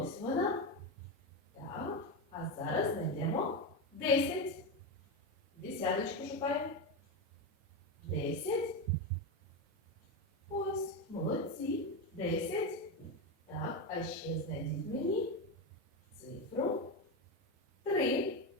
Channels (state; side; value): normal; both; correlation 0.13